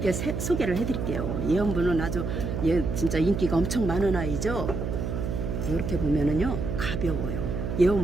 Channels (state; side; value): noise; right; hum, 3 dB below the sound